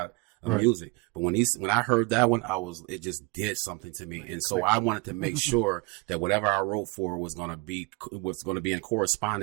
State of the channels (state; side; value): quieter; left; 27.4 dB